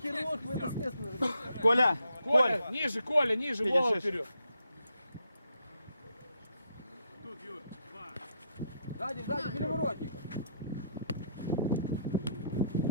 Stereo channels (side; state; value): both; inverted; correlation -0.75